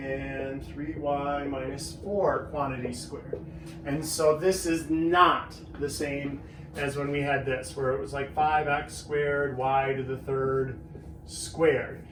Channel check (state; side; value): identical; both; correlation 1.00